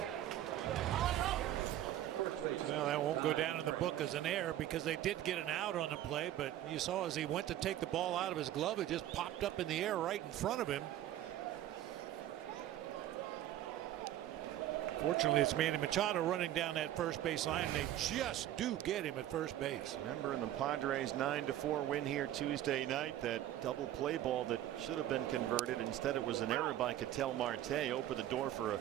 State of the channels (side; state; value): left; quieter; 12.7 dB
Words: Well, that won't go down in the book as an error because they did get an out on the play, but you saw as he went to take the ball out of his glove, it just popped up in the air right in front of him. Fortunately, it's Manny Machado running down that first base line, and they just do get him at first base. Remember in the Padres 9-4 win here Tuesday night, that double play ball that should have been converted. Instead, it was an error by Ketel Marte. Opened the door for a